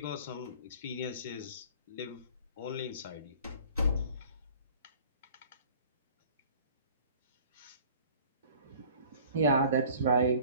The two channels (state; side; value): inverted; both; correlation -0.50